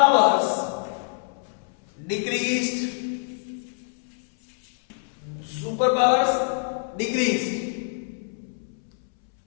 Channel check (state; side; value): silent; right; 61 dB below the other